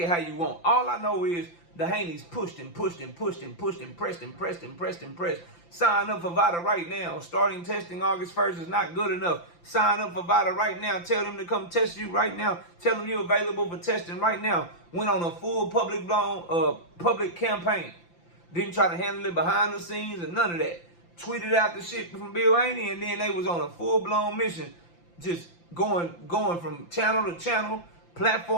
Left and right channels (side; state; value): right; late; 5.9 ms